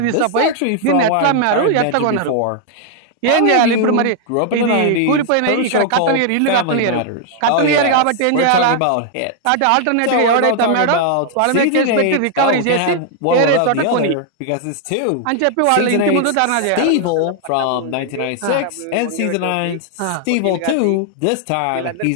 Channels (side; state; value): both; different; correlation 0.00